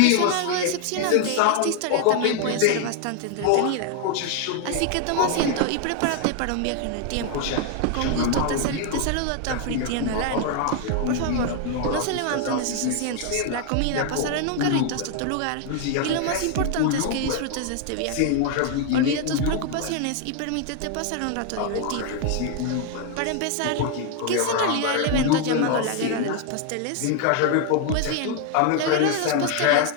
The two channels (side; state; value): both; different; correlation 0.00